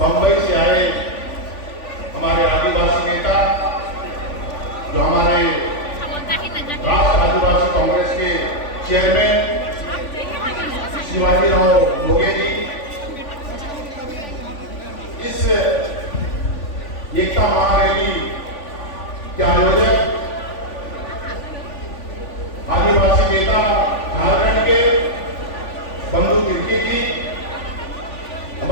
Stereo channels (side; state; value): right; late; 3.5 ms